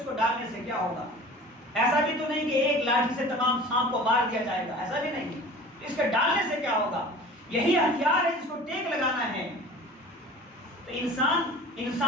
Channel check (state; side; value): normal; both; correlation 0.41